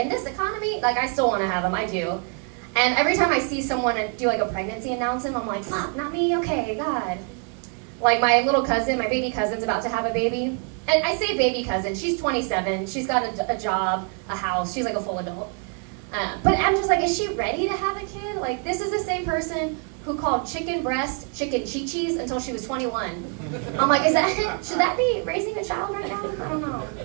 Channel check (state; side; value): quieter; left; 39.3 dB